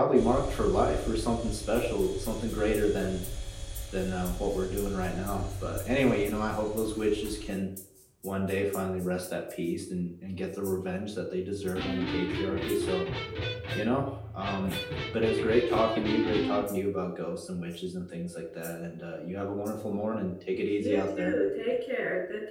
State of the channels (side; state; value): both; identical; correlation 1.00